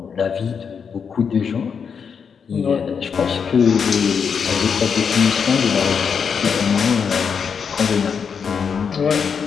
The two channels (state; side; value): quieter; right; 6.5 dB